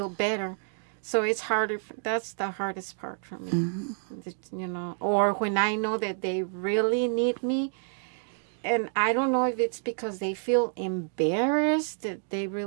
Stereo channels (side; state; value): left; silent; 59 dB below the other